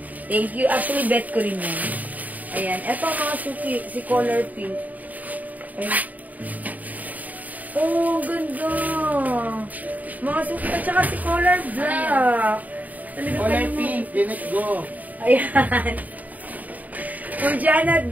Thank you. Actually, bet ko rin yan. Ayan. Ito, mga suki, si color pink. Ayan. Oh, ganda. Mga suki, at saka si color black. Color pink. Let's go. Ayan. For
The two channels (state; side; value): late; left; 0.076 ms